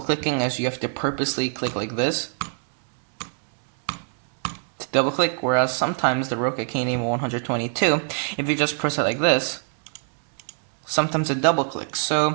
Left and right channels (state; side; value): silent; left; 61 dB below the other